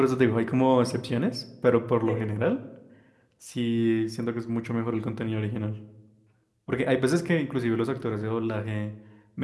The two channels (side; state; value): both; identical; correlation 1.00